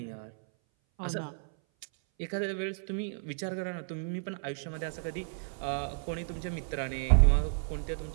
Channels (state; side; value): silent; left; 56 dB below the other